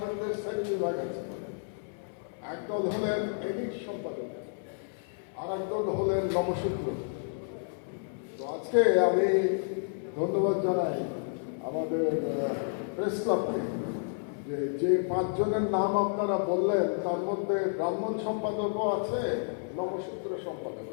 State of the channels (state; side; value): silent; right; 57 dB below the other